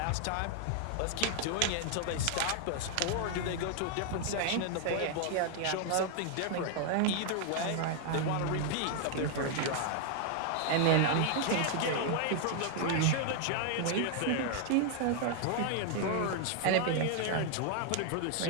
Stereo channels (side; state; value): both; different; correlation 0.00